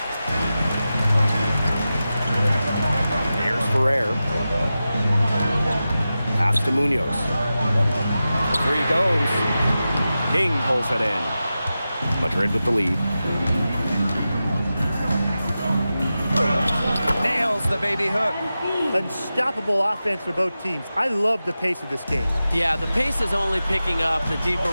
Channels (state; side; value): inverted; both; correlation -0.93